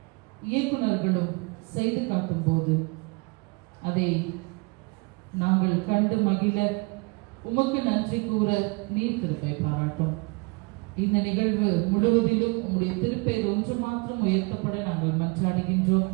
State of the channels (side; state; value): left; quieter; 29.2 dB